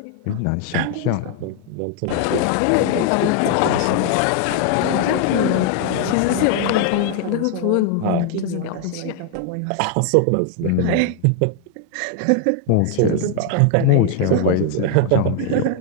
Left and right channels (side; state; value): both; different; correlation 0.00